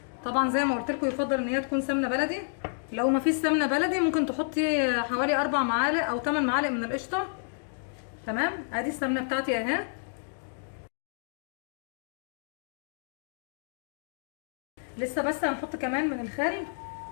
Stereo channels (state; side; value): silent; right; digital silence